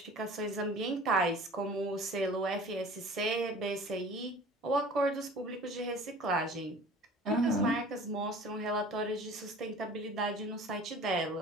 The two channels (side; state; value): both; normal; correlation 0.44